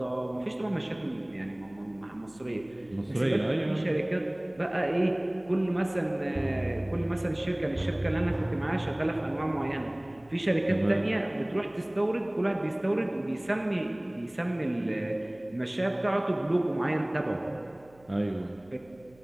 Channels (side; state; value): right; noise; hum, 28 dB below the sound